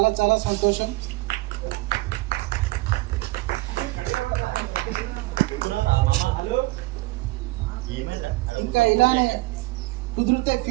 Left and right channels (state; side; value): quieter; left; 21.5 dB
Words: చాలా సంతోషం. ఇంకా ఇలానే కుదిరితే